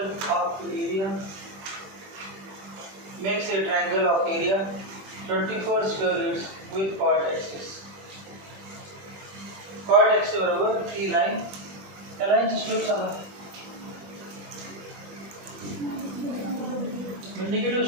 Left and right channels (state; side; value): late; left; 21 ms